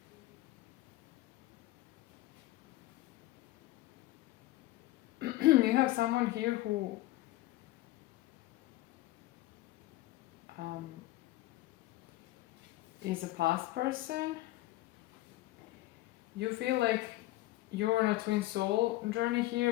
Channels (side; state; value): right; quieter; 17.6 dB